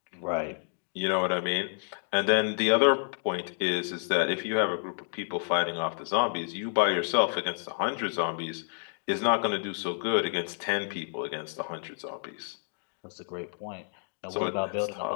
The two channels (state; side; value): silent; right; digital silence